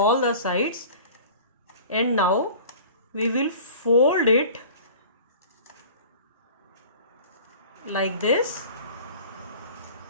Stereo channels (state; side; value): inverted; both; correlation -0.43